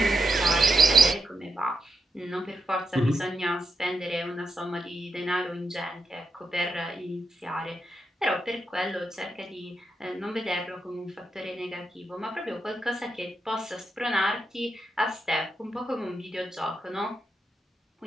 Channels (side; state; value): both; normal; correlation 0.86